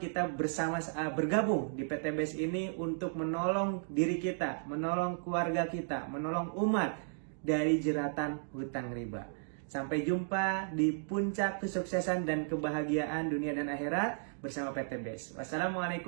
bergabung di PTBS ini untuk menolong diri kita, menolong keluarga kita, menolong umat dari jeratan hutang riba. Sampai jumpa di puncak kesuksesan dan kebahagiaan dunia dan akhirat bersama PTBS.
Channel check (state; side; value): silent; left; digital silence